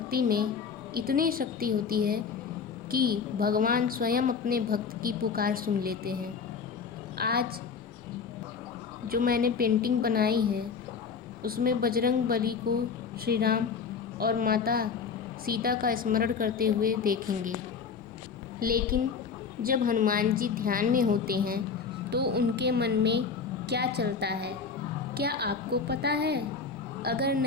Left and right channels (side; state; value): right; quieter; 5.8 dB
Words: में इतनी शक्ति होती है कि भगवान स्वयं अपने भक्त की पुकार सुन लेते हैं। आज जो मैंने पेंटिंग बनाई है उसमें बजरंग बली को श्री राम और माता सीता का स्मरण करते हुए देखेंगे। लेकिन जब हनुमान जी ध्यान में होते हैं तो उनके मन में क्या चलता है, क्या आपको पता है? अगर